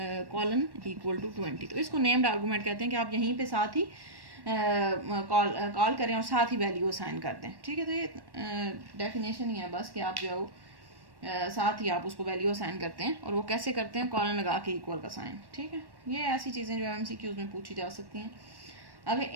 colon equal to 20। तो इसको नेम्ड आर्गूमेंट कहते हैं कि आप यहीं पे साथ ही कॉल करें और साथ ही वैल्यू असाइन कर दें, ठीक है। तो ये डेफिनेशन ही है बस कि आप जो है वो साथ ही आप उसको वैल्यू असाइन करते हैं। और वो कैसे करते हैं? कॉलन लगा के इक्वल का साइन, ठीक है। ये ऐसी चीज़ें जो MCQs में पूछी जा सकती हैं। अब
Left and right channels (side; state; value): left; late; 1.1 ms